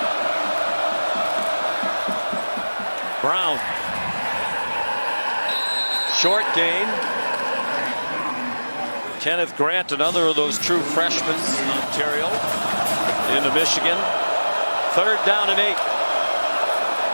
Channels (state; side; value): inverted; both; correlation -1.00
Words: Brown. Short gain. Kenneth Grant, another of those true freshmen, Ontario, into Michigan. Third down and 8.